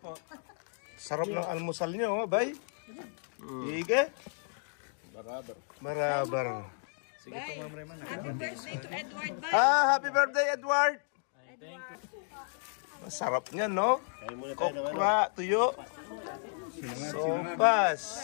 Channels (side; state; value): right; silent; 56 dB below the other